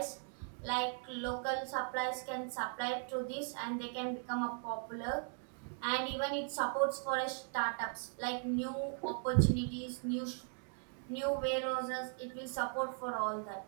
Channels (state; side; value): silent; left; 52 dB below the other